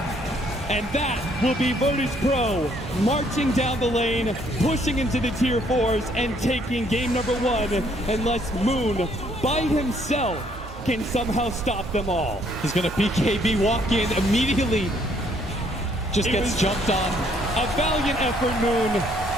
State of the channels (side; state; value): both; normal; correlation 0.66